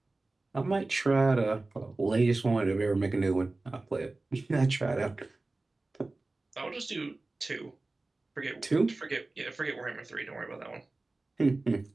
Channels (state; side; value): quieter; left; 3.2 dB